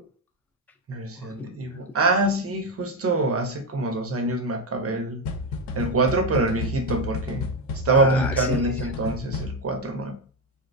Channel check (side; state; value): both; normal; correlation 0.08